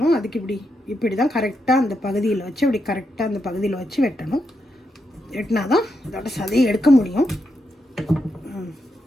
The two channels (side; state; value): both; normal; correlation 0.83